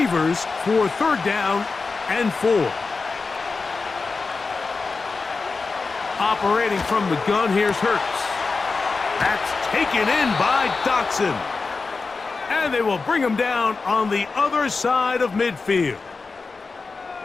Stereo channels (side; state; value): right; quieter; 4.2 dB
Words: for 3rd down and 4. Operating from the gun, here's Hurts. That's taken in by Dotson. And they will bring him down on the other side of midfield.